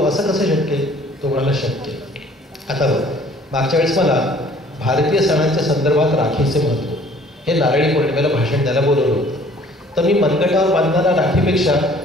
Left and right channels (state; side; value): normal; both; correlation 0.55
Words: असं कसं शक्य आहे? तो म्हणाला शक्य. आता बघ, मागच्या वेळेस मला भारतीय सणांच्या संदर्भात राखीचे महत्त्व हे नारळी पौर्णिमेला भाषण द्यायला बोलवलं होतं. तर मी मनगटावर बांधणारा राखीपेक्षा